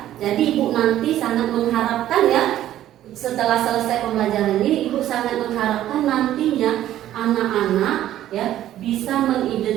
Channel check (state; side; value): quieter; left; 12.7 dB